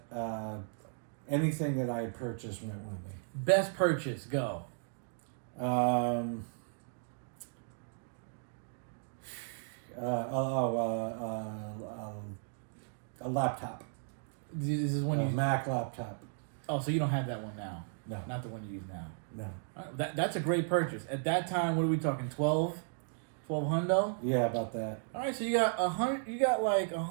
anything that I had purchased went with me. Best purchase, go. A laptop. This is when a Mac laptop. Oh, so you don't have that one now? No. Not the one you use now? No. That's a great purchase. At that time, what are we talking, 12 hundo? Yeah, about that. All right, so you got 100. You got like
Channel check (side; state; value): left; silent; digital silence